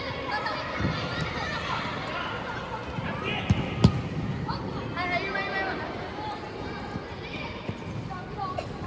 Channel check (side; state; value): both; identical; correlation 1.00